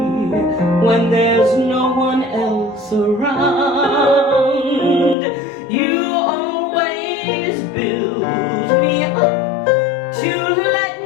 when there's no one else around. You always build me up to let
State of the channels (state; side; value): drops out; right; at 5.2 s